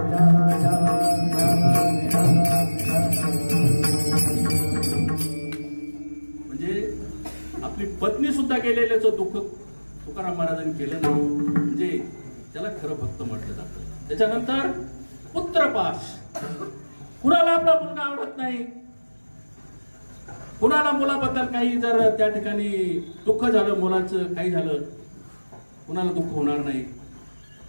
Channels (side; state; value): both; inverted; correlation -1.00